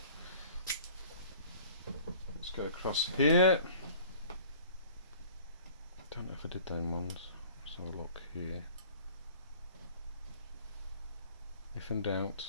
Let's go across here. Don't know if I did them ones. Let's have a look here. If in doubt,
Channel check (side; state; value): both; inverted; correlation -0.48